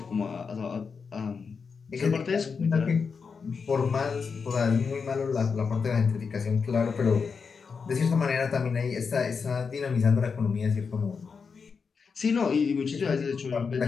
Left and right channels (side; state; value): right; quieter; 5.5 dB